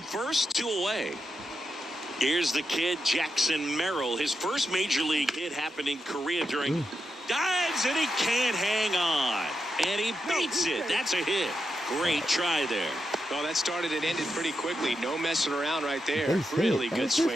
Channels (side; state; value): both; normal; correlation 0.86